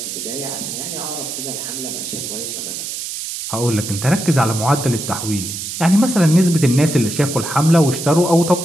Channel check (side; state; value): right; noise; hiss, 6 dB below the sound